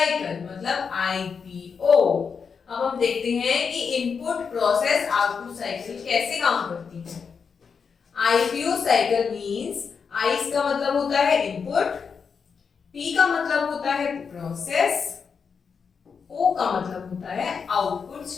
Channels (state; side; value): quieter; right; 5.9 dB